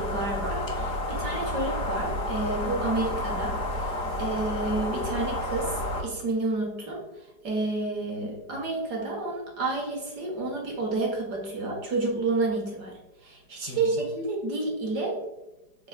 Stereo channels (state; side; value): late; left; 4.9 ms